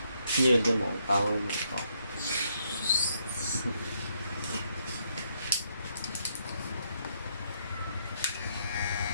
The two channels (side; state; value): both; inverted; correlation -0.74